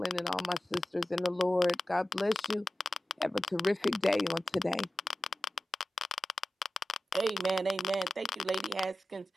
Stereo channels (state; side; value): normal; both; correlation 0.94